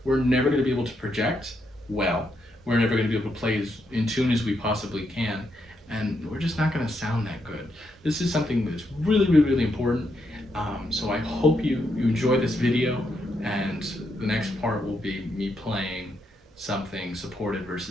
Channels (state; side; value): normal; both; correlation 0.80